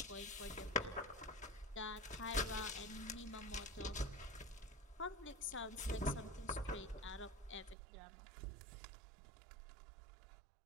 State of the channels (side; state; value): left; drops out; at 7.8 s